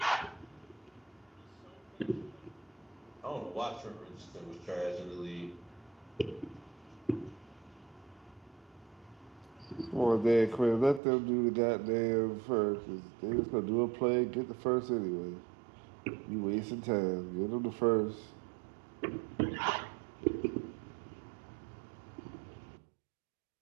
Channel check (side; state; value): left; drops out; at 11.0 s